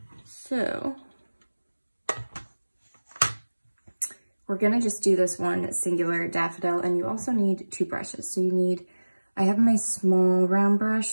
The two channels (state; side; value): inverted; both; correlation -1.00